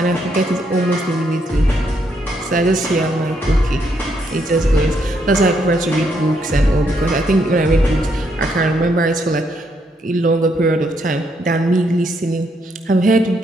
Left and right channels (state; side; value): normal; both; correlation 0.75